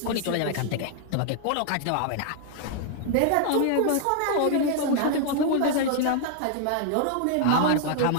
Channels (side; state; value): both; different; correlation 0.00